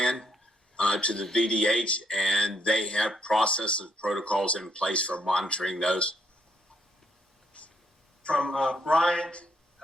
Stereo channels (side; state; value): both; normal; correlation 0.72